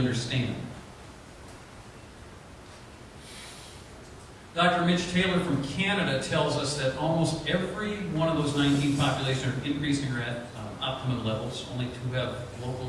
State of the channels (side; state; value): both; identical; correlation 1.00